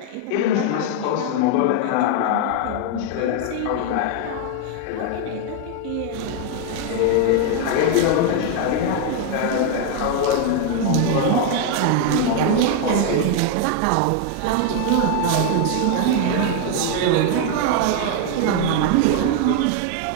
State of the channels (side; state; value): both; different; correlation 0.00